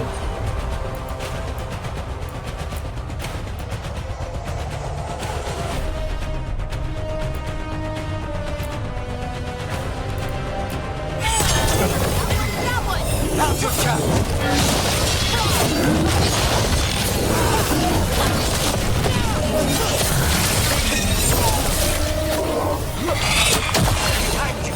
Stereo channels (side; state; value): both; identical; correlation 1.00